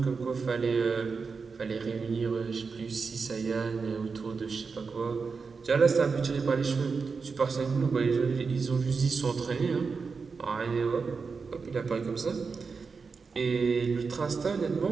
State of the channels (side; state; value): left; quieter; 5.0 dB